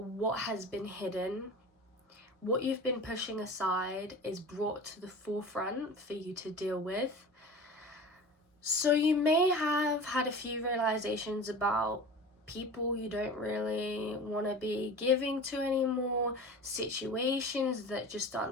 has been hidden. What you've been pushing aside is brought to the forefront for you to deal with. So you may have had a few realizations about people you don't really want to be giving to anymore, situations that just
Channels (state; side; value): normal; both; correlation 0.35